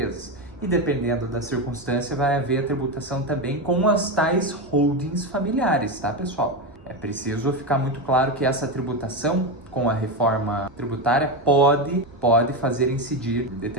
E dependendo da circunstância, vai haver a tributação também com as tais holdings familiares, tá, pessoal? É preciso ficar muito claro que essa tributação com a reforma tributária pode fazer incidir, em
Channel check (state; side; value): normal; both; correlation 0.14